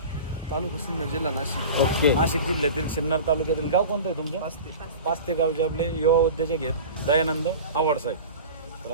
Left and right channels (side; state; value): both; inverted; correlation -0.35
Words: तालुका सिन्नर जिल्हा नाशिक. ओके. नाशिक जिल्ह्यातील सिन्नर तालुक्यातील गाव कोणतं आहे तुमचं. पाचते गावचे आपले युवा उद्योजक आहेत दयानंद आवड साहेब. तर